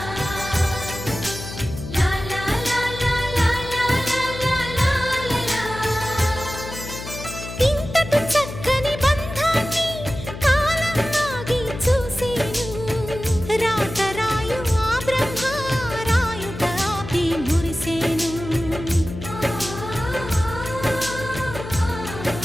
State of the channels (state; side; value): noise; left; hum, 10 dB below the sound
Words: ఇంతటి చక్కని బంధాన్ని కాలం ఆగి చూసేను రాతరాయు ఆ బ్రహ్మ రాయుట ఆపి మురిసేను